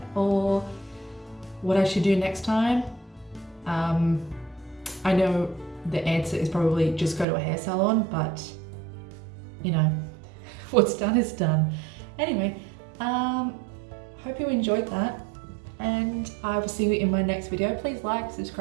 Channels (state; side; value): drops out; left; at 7.2 s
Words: or what I should do next time, I know the answer is probably just go to a hair salon, but you know, what's done is done. Anyway, hope you enjoyed that, and I will see you in my next video. Please like,